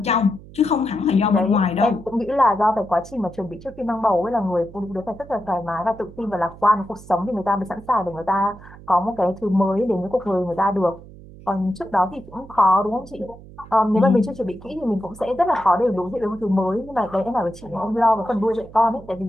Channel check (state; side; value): noise; right; hum, 19 dB below the sound